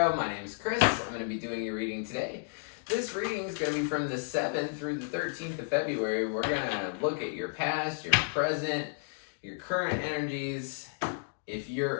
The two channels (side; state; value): right; silent; digital silence